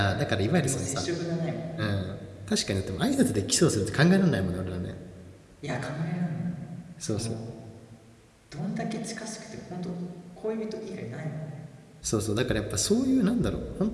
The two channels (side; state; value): both; identical; correlation 1.00